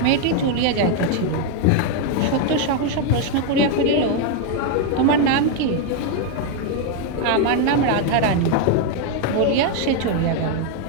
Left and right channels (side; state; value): both; different; correlation 0.01